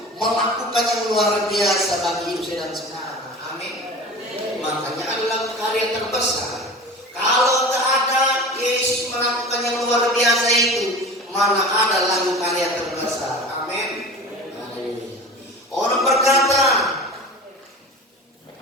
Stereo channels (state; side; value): normal; both; correlation 0.35